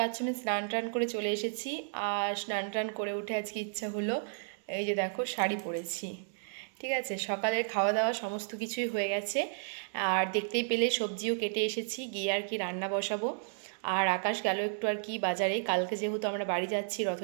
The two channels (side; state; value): left; silent; digital silence